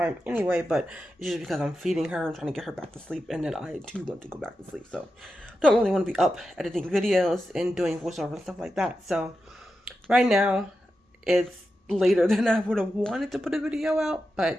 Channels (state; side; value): normal; both; correlation 0.90